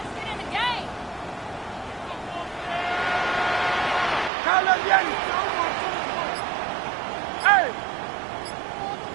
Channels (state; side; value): drops out; left; at 4.3 s